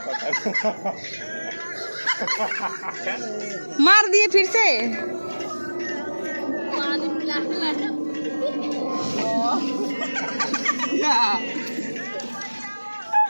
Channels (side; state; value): both; inverted; correlation -1.00